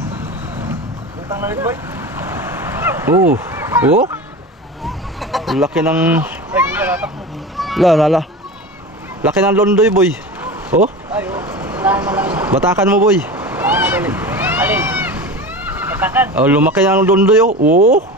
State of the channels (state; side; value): normal; both; correlation 0.30